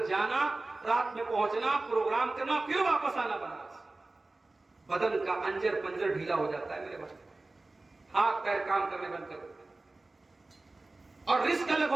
جانا, رات میں پہنچنا, پروگرام کرنا, پھر واپس آنا بنارس. بدن کا انجر پنجر ڈھیلا ہو جاتا ہے میرے بچے, ہاتھ پیر کام کرنے بند کر دیتے ہیں. اور رزق الگ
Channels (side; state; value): left; quieter; 3.1 dB